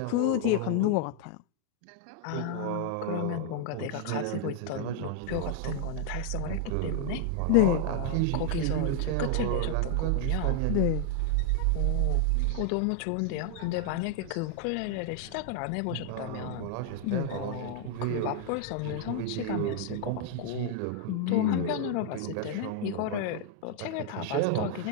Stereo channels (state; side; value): different; both; correlation 0.00